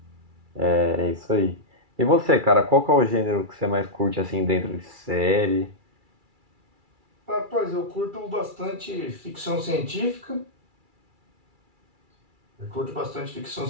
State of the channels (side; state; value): left; late; 2.3 ms